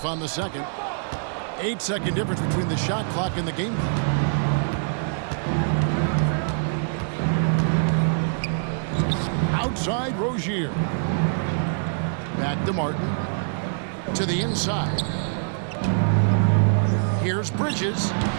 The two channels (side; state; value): left; silent; 62 dB below the other